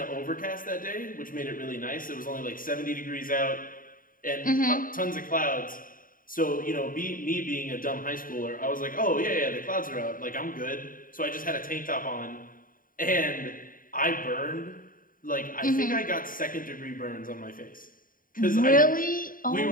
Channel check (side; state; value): right; late; 0.40 ms